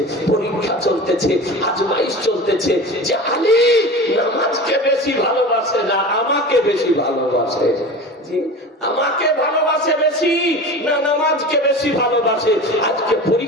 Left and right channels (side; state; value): both; normal; correlation 0.33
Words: পরীক্ষা চলতেছে, আজমাইশ চলতেছে, যে আলী নামাজকে বেশি ভালোবাসে না আমাকে বেশি ভালোবাসে, আমাকে ভালোবাসে বেশি না নামাজকে বেশি ভালোবাসে। আজকে